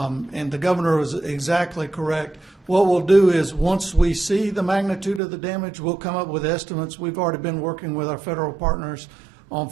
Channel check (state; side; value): drops out; left; at 5.2 s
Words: the governor was exactly correct. What we'll do is once we see the magnitude of the damage, we'll come up with estimates. We've already been working with our federal partners on